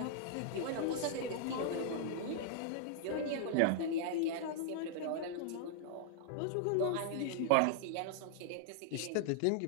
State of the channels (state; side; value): different; both; correlation -0.01